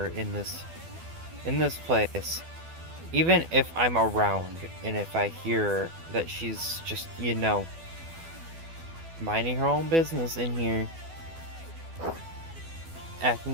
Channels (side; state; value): left; late; 12 ms